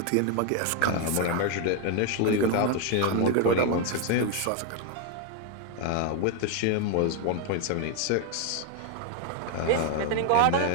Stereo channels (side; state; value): both; different; correlation 0.01